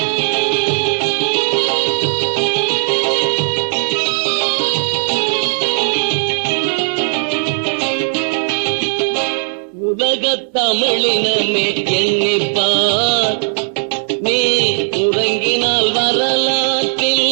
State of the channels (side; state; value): left; silent; 67 dB below the other